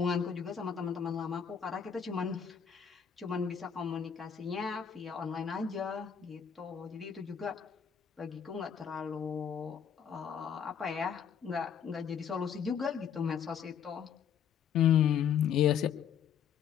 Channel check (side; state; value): right; quieter; 7.8 dB